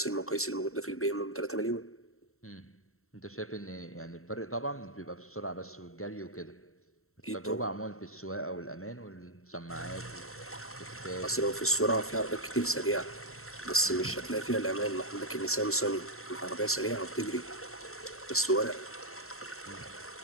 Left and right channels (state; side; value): late; right; 0.63 ms